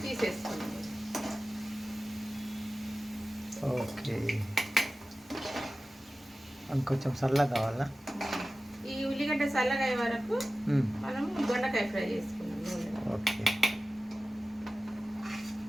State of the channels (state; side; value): normal; both; correlation 0.96